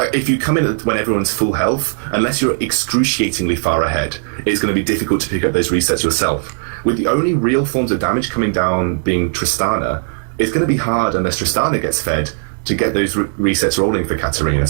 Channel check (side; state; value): left; silent; digital silence